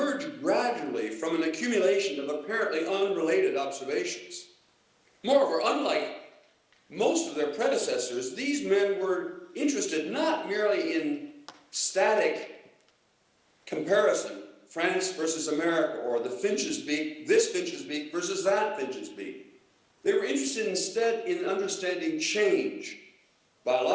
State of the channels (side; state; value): both; identical; correlation 1.00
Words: gradually from an accumulation of apparently unrelated observations. Moreover, unlike most of their predecessors, these men were interested not merely in static comparison, France versus America, or the finch's beak, this finch's beak versus that finch's beak. They were interested instead in understanding change,